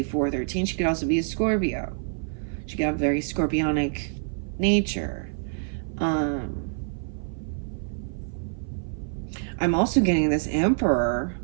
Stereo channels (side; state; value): left; silent; 56 dB below the other